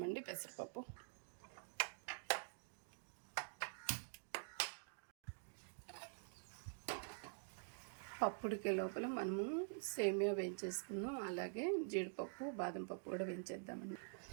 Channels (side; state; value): left; silent; digital silence